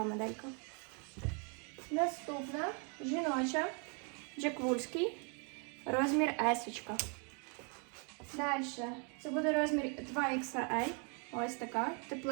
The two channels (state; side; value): quieter; left; 37.0 dB